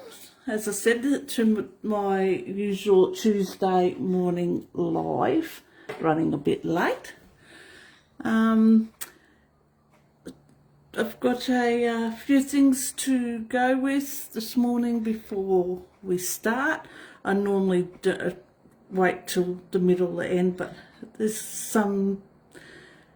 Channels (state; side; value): identical; both; correlation 1.00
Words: as I said, to my usual Tuesday morning live, running a bit late. I've got a few things to go with this morning before we start. I normally wait till the middle or the end, but there's some